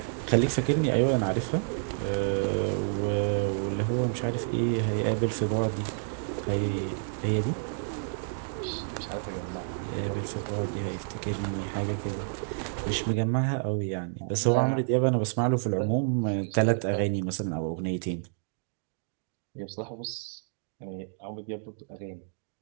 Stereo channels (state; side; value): silent; left; digital silence